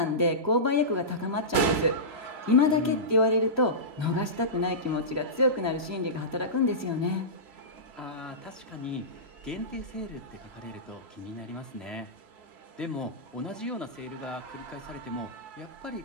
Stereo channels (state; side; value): late; left; 3.0 ms